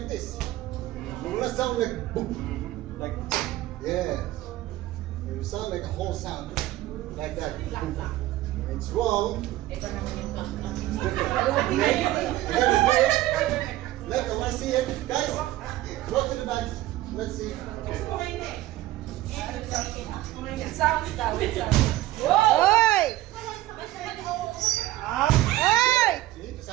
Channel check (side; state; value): left; quieter; 15.9 dB